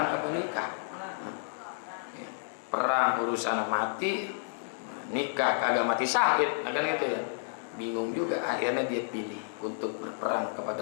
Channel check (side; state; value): right; silent; digital silence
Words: apa nikah? Perang urusan mati, nikah kagak mati syahid, nah kan gitu ya. Bingung juga, akhirnya dia pilih untuk berperang